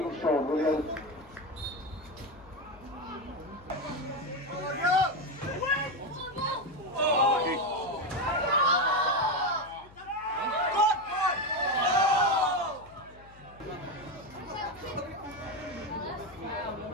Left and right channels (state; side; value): noise; left; hum, 22 dB below the sound